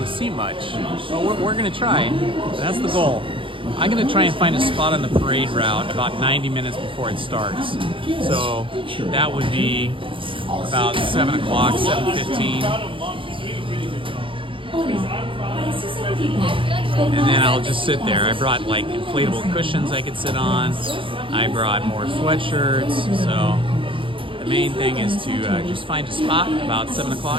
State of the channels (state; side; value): late; left; 0.25 ms